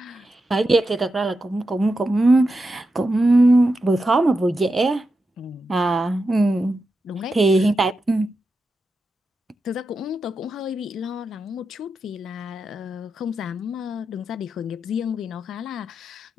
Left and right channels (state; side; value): normal; both; correlation 0.89